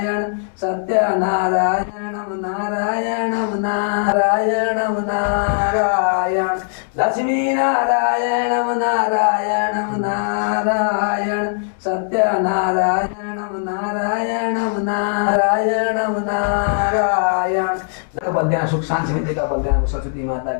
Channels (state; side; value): silent; right; 66 dB below the other